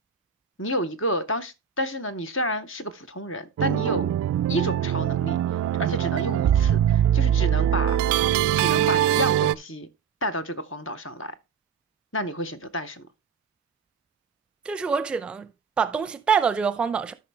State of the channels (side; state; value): left; quieter; 6.7 dB